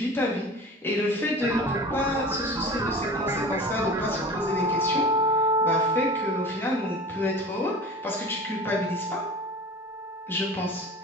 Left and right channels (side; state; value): both; normal; correlation 0.37